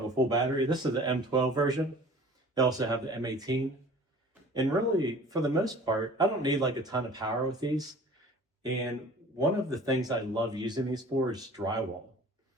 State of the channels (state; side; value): normal; both; correlation 0.46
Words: a full battery. This is the M12 version. They also have the M18. And really, for the most part, I don't need like a ton of power with these. And one of the things I love using these for is drywall.